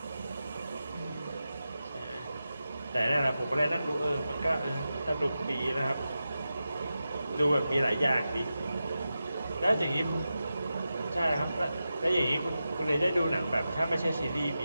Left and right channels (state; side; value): inverted; both; correlation -0.91